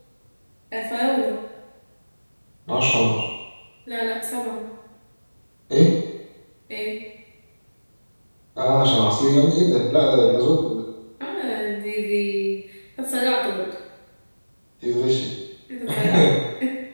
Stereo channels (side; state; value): both; inverted; correlation -1.00